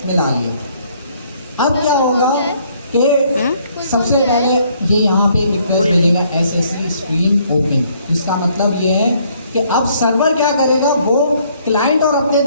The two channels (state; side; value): inverted; both; correlation -0.65